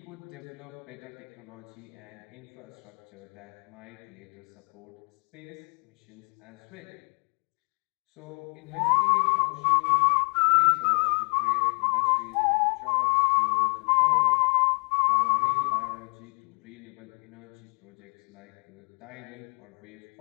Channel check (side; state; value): right; quieter; 39.0 dB